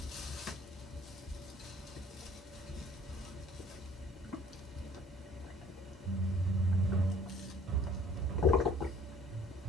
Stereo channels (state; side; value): normal; both; correlation 0.55